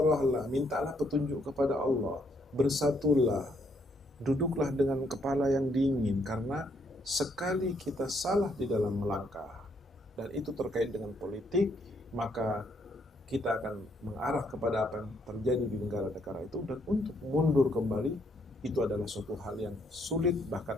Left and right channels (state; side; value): normal; both; correlation 0.71